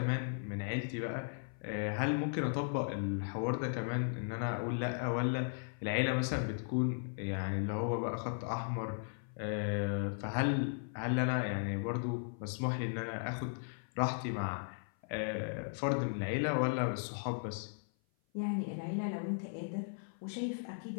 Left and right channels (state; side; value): silent; right; 53 dB below the other